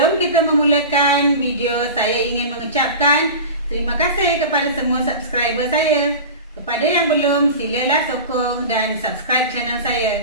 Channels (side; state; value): both; inverted; correlation -0.30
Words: kita memulakan video, saya ingin mengucapkan terima kasih kepada semua subscriber saya. Kepada yang belum, silalah sokong dan subscribe channel